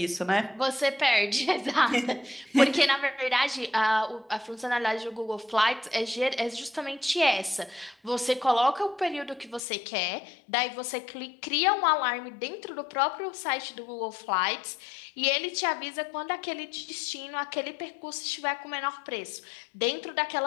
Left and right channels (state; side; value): drops out; right; at 9.6 s